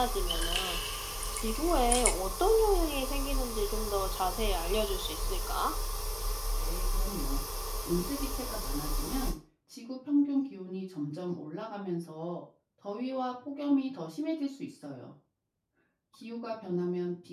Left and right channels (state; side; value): identical; both; correlation 1.00